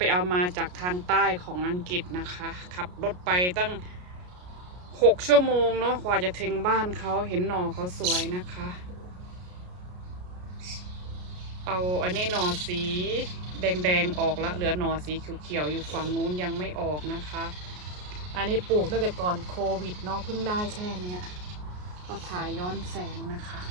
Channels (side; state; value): left; late; 33 ms